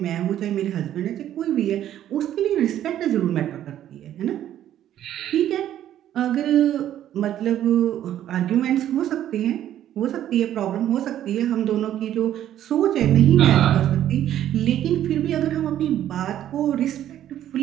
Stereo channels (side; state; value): left; quieter; 11.6 dB